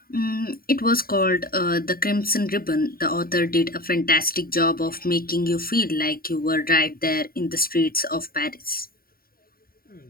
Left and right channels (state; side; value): late; right; 0.43 ms